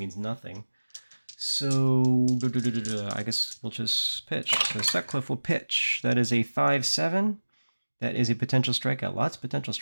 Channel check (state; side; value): inverted; both; correlation -1.00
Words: nothing. So I guess we'll just pitch. So Sutcliffe will pitch. That is a 5-7. That is a potential strikeout. Lots of potential